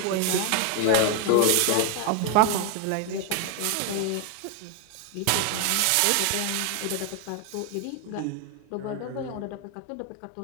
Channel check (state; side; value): different; both; correlation 0.01